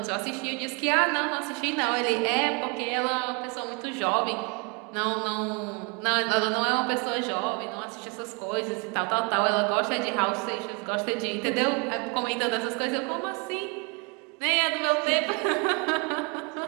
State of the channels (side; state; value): left; quieter; 32.4 dB